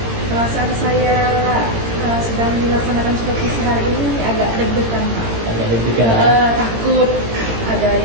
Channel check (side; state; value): left; late; 18 ms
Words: Perasaan saya sedang dilaksanakan supervisi hari ini agak deg-degan, Pak. Agak deg-degan. Takut ada